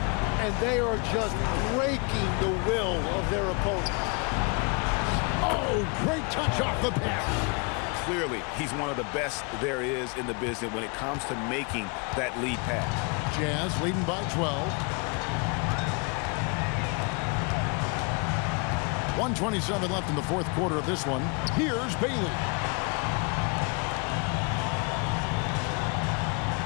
And they are just breaking the will of their opponent. Oh, great touch off the pass. clearly, he's one of the best there is in the business when it comes to making that lead pass. Jazz leading by 12. 1:27 left in the fourth quarter of this one. Here's Bailey.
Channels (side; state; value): right; quieter; 33.4 dB